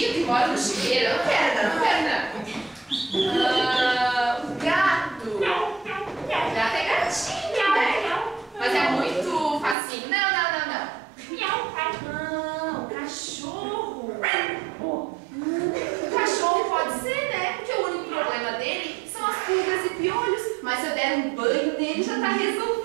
e mora no chiqueiro. Eu não quero, não. O gato. O gato é gatinho, né? Mas é muito facinho. Não. O cachorro. O cachorro pode ser, né? Porque o único problema dele são as pulgas e piolhos. Mas se eu der um banho nele, já tá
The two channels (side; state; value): left; drops out; at 9.8 s